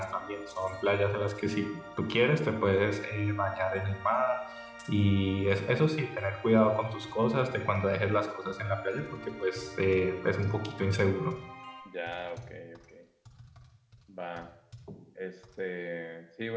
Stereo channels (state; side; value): identical; both; correlation 1.00